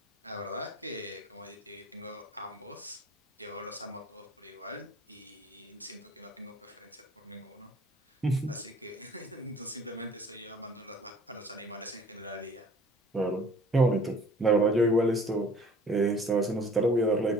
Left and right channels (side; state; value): both; normal; correlation 0.51